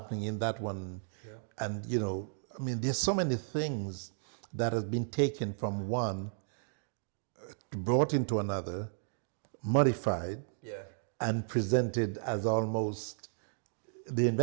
in that one. Yeah. And, you know, I mean, there's so many things that have been taken from one, brought into another, modified, and presented as almost the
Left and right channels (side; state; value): left; silent; digital silence